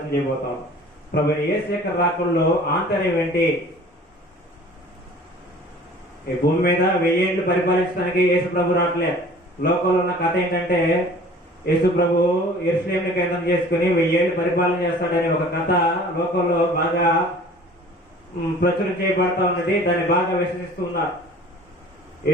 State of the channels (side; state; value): both; normal; correlation 0.47